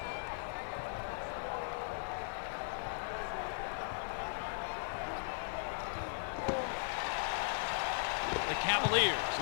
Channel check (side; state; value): right; silent; digital silence